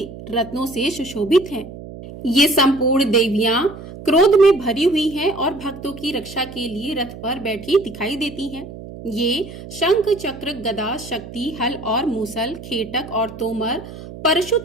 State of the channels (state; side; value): noise; right; hum, 14 dB below the sound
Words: रत्नों से सुशोभित हैं। ये संपूर्ण देवियां क्रोध में भरी हुई हैं और भक्तों की रक्षा के लिए रथ पर बैठी दिखाई देती हैं। ये शंख, चक्र, गदा, शक्ति, हल और मूसल, खेटक और तोमर, परशु